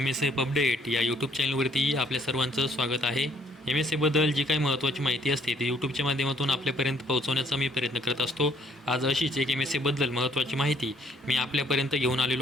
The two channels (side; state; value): both; normal; correlation 0.64